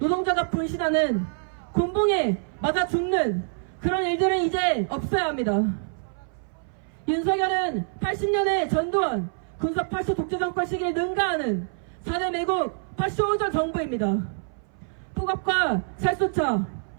분신하는 곤봉에 맞아 죽는 그런 일들은 이제 없어야 합니다. 윤석열은 80년의 전두환 군사 파쇼 독재 정권 시기에 능가하는 4대 매국 파쇼원전 정부입니다. 폭압과 살수차,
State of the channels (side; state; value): left; silent; 59 dB below the other